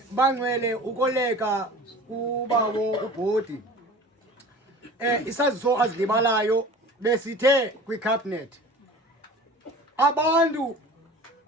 Bangcwele ukoleka kubawo ubhodi. Isaziso azilibalayo besithe kwicabinet abantu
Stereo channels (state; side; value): normal; both; correlation 0.40